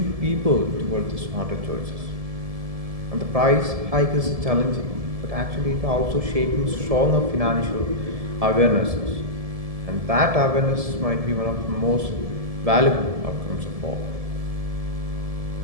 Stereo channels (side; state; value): left; late; 1.7 ms